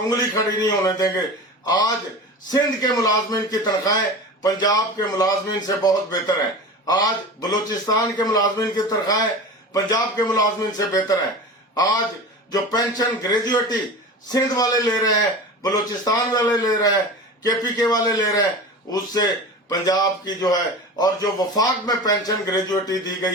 खड़ी नहीं होने देंगे। आज सिंध के मुलाजमीन की तनख्वाहें पंजाब के मुलाजमीन से बहुत बेहतर हैं। आज बलूचिस्तान के मुलाजमीन की तनख्वाहें पंजाब के मुलाजमीन से बेहतर हैं। आज जो पेंशन ग्रेजुएटी सिंध वाले ले रहे हैं, बलूचिस्तान वाले ले रहे हैं, केपीके वाले ले रहे हैं, उससे पंजाब की जो है और जो वफाक में पेंशन ग्रेजुएटी दी गई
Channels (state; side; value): normal; both; correlation 0.32